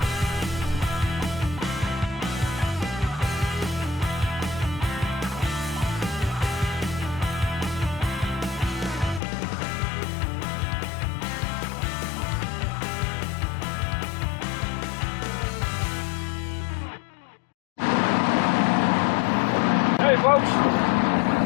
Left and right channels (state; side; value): drops out; right; at 9.2 s